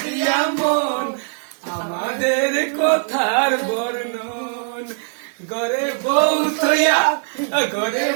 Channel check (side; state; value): left; silent; 65 dB below the other